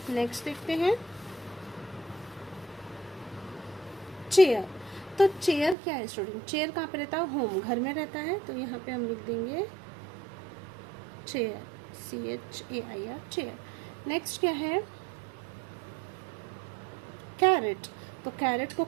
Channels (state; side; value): drops out; left; at 5.8 s